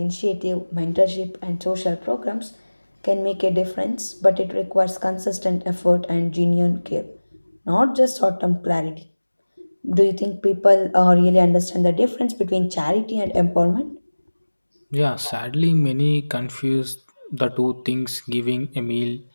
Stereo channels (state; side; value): inverted; both; correlation -1.00